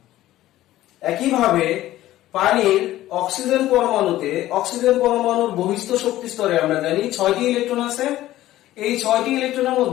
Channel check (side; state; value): right; quieter; 14.8 dB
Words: একইভাবে পানির অক্সিজেন পরমাণুতে অক্সিজেন পরমাণুর বহিস্থ শক্তি স্তরে আমরা জানি 6টি ইলেকট্রন আছে। এই 6টি ইলেকট্রনের